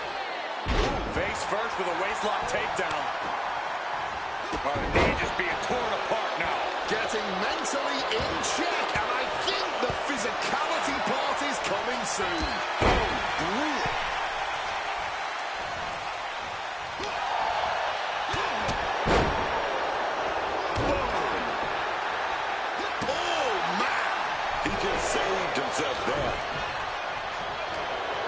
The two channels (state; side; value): identical; both; correlation 1.00